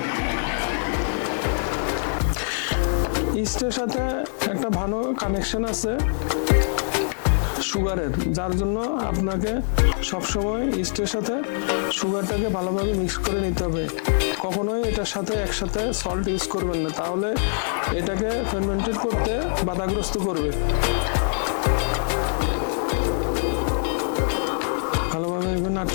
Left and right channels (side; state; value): right; silent; digital silence